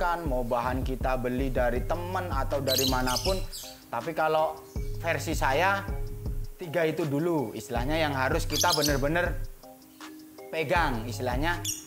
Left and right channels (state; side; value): identical; both; correlation 1.00